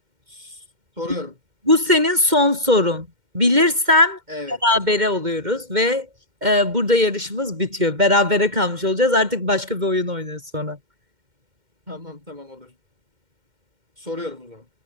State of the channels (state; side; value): late; left; 2.1 ms